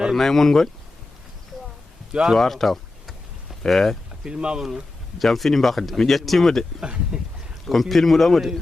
mon goni cuwar taw jam fini mbakde mi ƴettima de komi pilmuɗomo de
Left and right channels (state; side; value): quieter; right; 3.1 dB